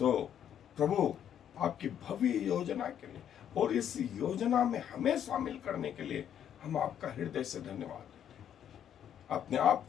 प्रभु आपकी भव्य योजना के लिए और इस योजना में हमें शामिल करने के लिए हम आपका हृदय से धन्यवाद देते हैं। अपने आप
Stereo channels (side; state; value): right; quieter; 9.6 dB